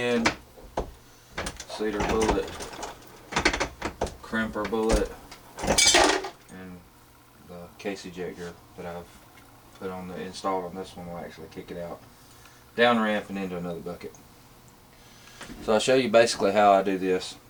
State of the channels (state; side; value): identical; both; correlation 1.00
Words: Seat our bullet. Crimp our bullet. And the case ejector that I've put on installed on this one will actually kick it out. Down ramp and into another bucket. So I'll show you basically how I do this.